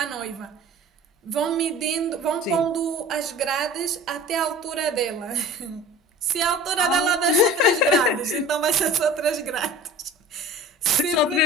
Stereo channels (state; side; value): normal; both; correlation 0.41